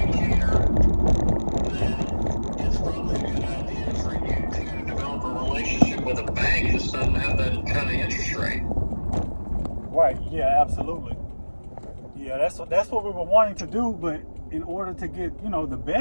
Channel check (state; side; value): inverted; both; correlation -1.00